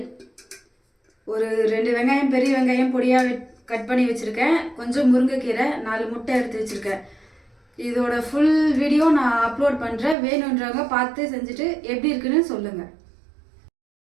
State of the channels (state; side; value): drops out; left; at 10.2 s